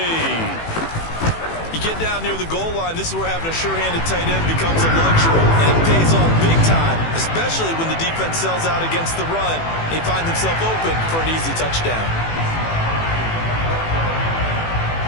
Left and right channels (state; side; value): late; right; 18 ms